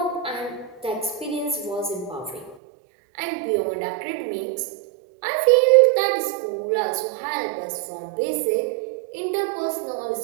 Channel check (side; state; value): left; drops out; at 2.6 s